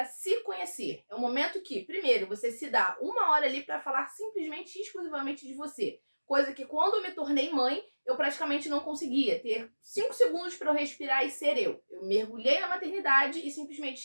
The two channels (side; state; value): both; inverted; correlation -1.00